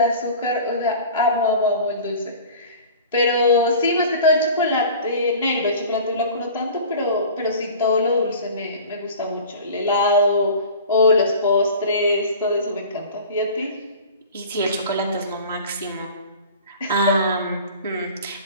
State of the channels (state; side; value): inverted; both; correlation -0.41